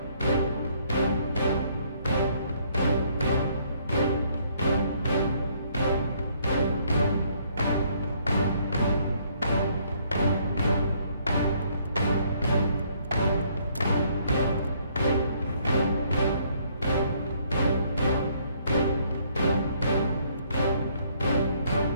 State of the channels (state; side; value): inverted; both; correlation -0.65